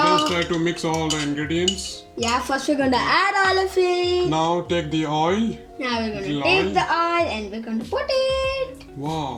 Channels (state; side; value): identical; both; correlation 1.00